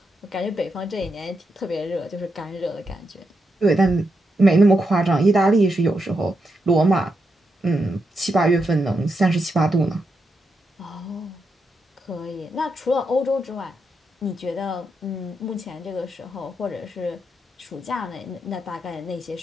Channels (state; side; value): normal; both; correlation 0.84